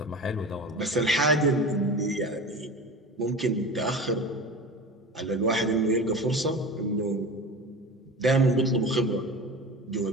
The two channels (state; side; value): normal; both; correlation 0.32